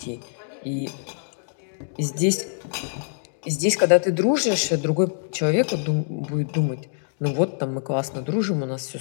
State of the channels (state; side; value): silent; right; digital silence